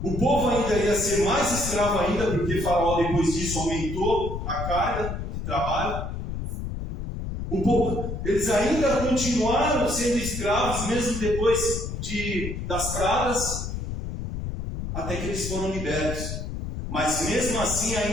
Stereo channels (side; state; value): left; noise; rumble, 5 dB below the sound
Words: O povo ainda ia ser mais escravo ainda, porque Faraó, depois disso, aumentou a carga de trabalho. O povo, eles ainda continuaram sendo escravos, mesmo depois das pragas, até que eles foram libertos. Mas mesmo assim